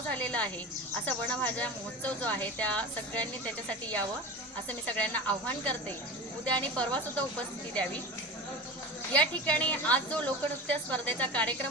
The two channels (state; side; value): normal; both; correlation 0.29